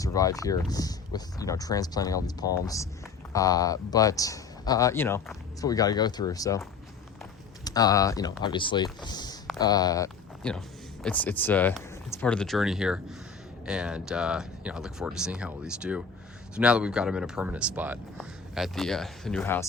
here with, transplanting all these palms. But it's what we got to go through. So, obviously, it's part of the journey here. And, I look forward to seeing how all these do. So now that we've got them in a permanent spot at the new house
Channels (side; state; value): right; quieter; 5.5 dB